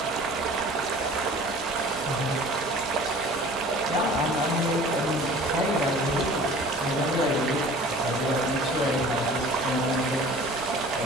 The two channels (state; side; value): normal; both; correlation 0.45